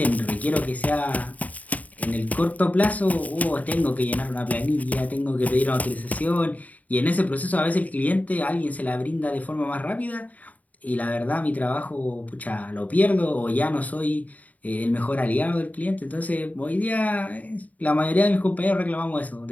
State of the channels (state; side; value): late; right; 0.072 ms